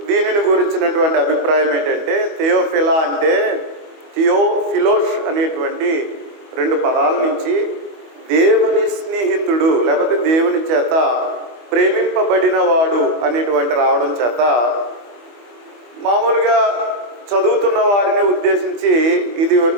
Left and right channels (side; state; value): left; late; 24 ms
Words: దీనిని గురించినటువంటి అభిప్రాయం ఏంటంటే, థియోఫిలా అంటే థియోఫిలోస్ అనేటువంటి 2 పదాల నుంచి దేవుని స్నేహితుడు లేకపోతే దేవుని చేత ప్రేమింపబడిన వాడు అనేటువంటి రావడం చేత మామూలుగా చదువుతున్న వారిని ఉద్దేశించి ఇది